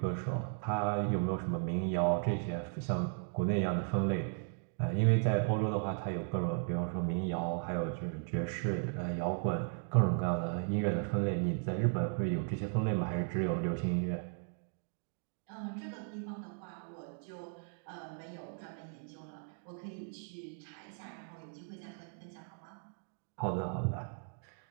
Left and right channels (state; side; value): silent; left; 54 dB below the other